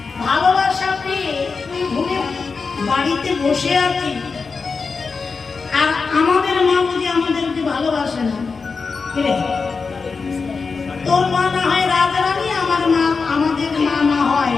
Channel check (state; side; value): quieter; right; 4.8 dB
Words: ভালোবাসা পেয়ে তুই ভুলে বাড়িতে বসে আছিস, আর আমাদের মা বুঝি আমাদেরকে ভালোবাসে না। তোর মা না হয় রাজরানী, আমাদের মা না হয়